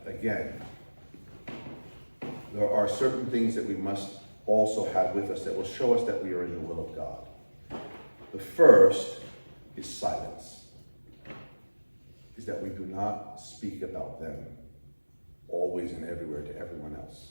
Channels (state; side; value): inverted; both; correlation -1.00